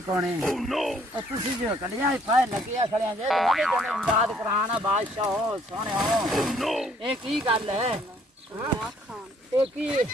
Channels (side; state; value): both; normal; correlation 0.63